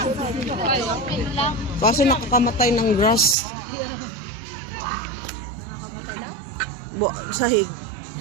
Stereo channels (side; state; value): left; drops out; at 3.4 s